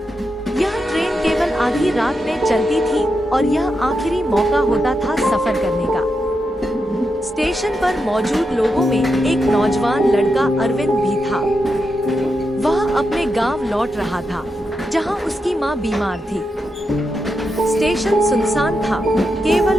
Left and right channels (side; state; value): both; normal; correlation 0.86